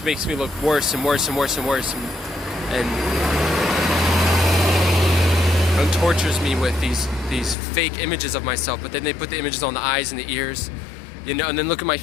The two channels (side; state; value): right; drops out; at 7.6 s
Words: makes me look worse and worse and worse and worse, and tortures me with these fake images of myself. But then they put the images on the eyes and the ears, you know. And then look at my